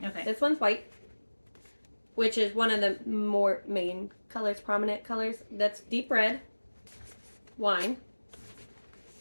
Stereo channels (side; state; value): both; inverted; correlation -1.00